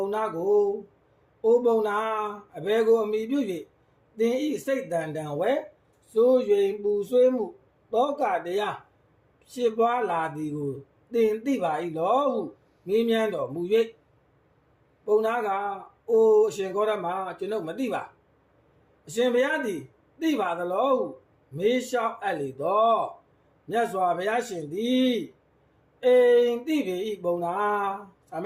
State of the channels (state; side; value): identical; both; correlation 1.00